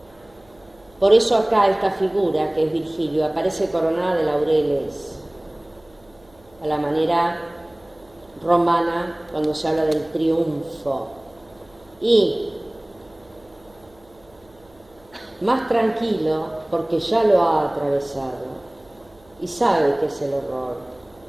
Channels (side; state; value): right; noise; hum, 30 dB below the sound